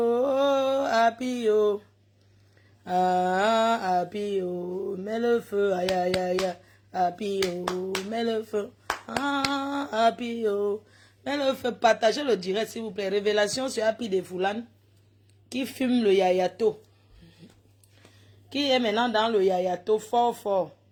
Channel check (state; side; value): identical; both; correlation 1.00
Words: happy, oh. Ah, happy, oh, mets le feu. Aïe, aïe, aïe, happy, oh, mets le feu. Ah, happy, oh, mets le feu. Partagez le direct, s'il vous plaît. Révélation sur Happy de Foulane qui fume le yayato. Qui est maintenant dans le yayato fort, fort.